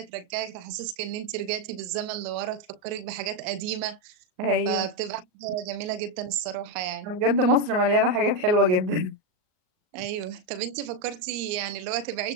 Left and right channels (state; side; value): late; left; 38 ms